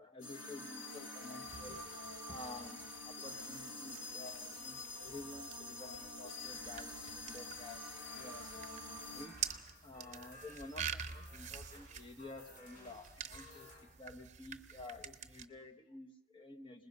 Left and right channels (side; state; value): both; normal; correlation 0.12